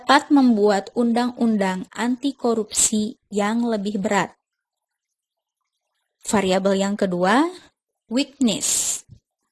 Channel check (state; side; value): identical; both; correlation 1.00